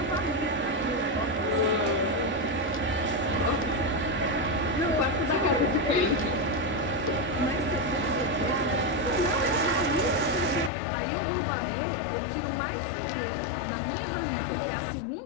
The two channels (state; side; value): drops out; right; at 10.7 s